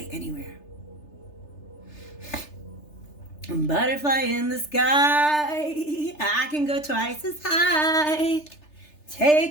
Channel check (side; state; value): right; late; 3.3 ms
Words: anywhere. Butterfly in the sky. I can go twice as high.